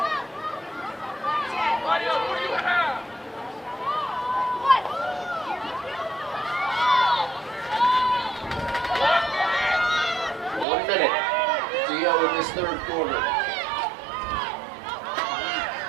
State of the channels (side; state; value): left; drops out; at 10.7 s